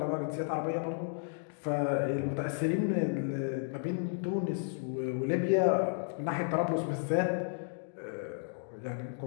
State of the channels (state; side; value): silent; right; digital silence